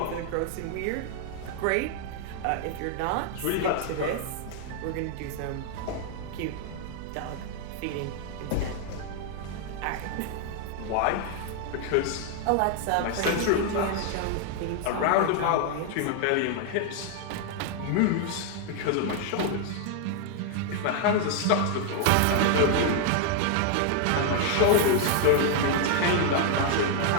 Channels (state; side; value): different; both; correlation 0.00